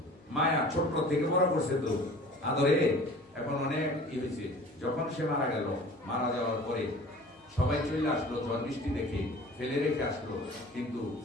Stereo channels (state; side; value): normal; both; correlation 0.44